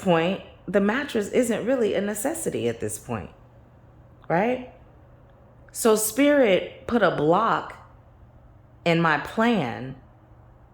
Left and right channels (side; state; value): both; identical; correlation 1.00